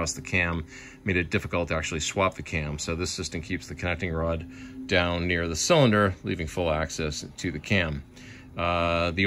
the cam, made it difficult to actually swap the cam. So this system keeps the connecting rod down near the cylinder, leaving full access to the cam. The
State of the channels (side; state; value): both; identical; correlation 1.00